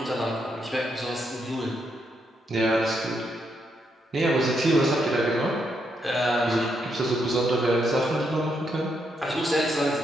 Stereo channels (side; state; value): both; normal; correlation 0.79